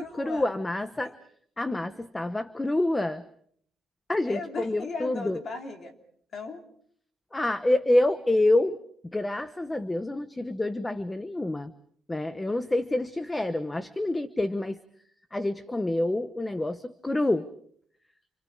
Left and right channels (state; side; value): normal; both; correlation 0.96